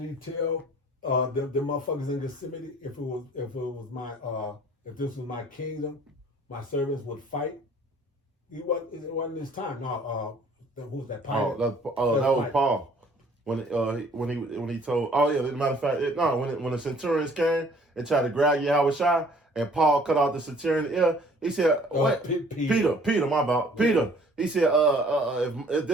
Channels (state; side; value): normal; both; correlation 0.56